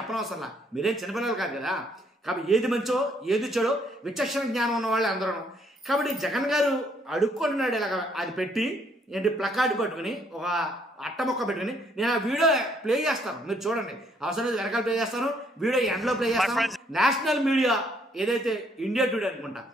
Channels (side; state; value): both; normal; correlation 0.68